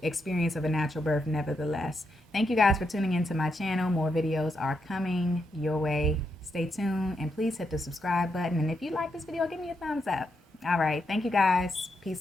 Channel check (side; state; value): both; normal; correlation 0.82